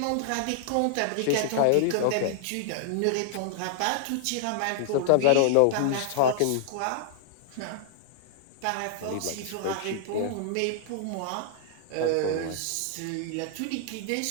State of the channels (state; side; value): different; both; correlation -0.01